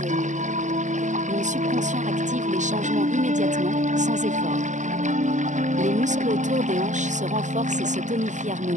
Mon subconscient active les changements immédiatement, sans effort. Les muscles autour des hanches se renforcent et se tonifient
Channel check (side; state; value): left; late; 0.35 ms